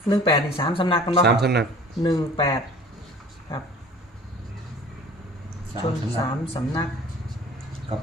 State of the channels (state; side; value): normal; both; correlation 0.46